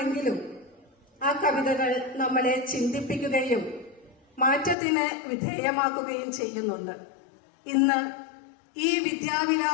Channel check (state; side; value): drops out; right; at 4.8 s